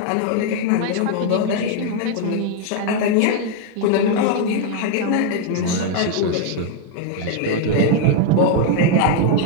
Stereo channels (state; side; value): different; both; correlation 0.01